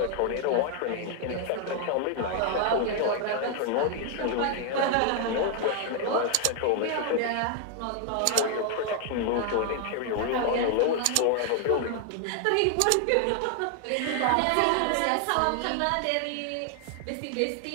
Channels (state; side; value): different; both; correlation 0.00